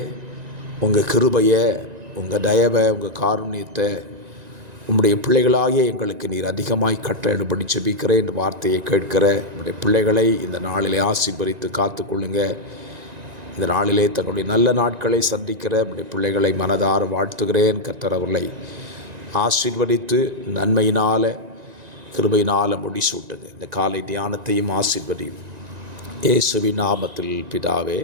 உங்கள் கிருபையை, உங்கள் தயவை, உங்கள் காருண்யத்தை உங்களுடைய பிள்ளைகளாகிய எங்களுக்கு நீர் அதிகமாய் கட்டளையிடும்படி ஜெபிக்கிறேன். இந்த வார்த்தையை கேட்கிற உங்களுடைய பிள்ளைகளை இந்த நாளிலே ஆசீர்வதித்து காத்துக்கொள்ளுங்க. இந்த நாளிலே தங்களுடைய நல்ல நாட்களை சந்திக்கிற உங்களுடைய பிள்ளைகளை மனதார வாழ்த்துகிறேன். கர்த்தர் அவர்களை ஆசீர்வதித்து நன்மையினால் கிருபையினால் முடிசூட்டுங்க. இந்த காலை தியானத்தையும் ஆசீர்வதியும் இயேசுவின் நாமத்தில் பிதாவே,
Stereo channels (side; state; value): left; late; 1.9 ms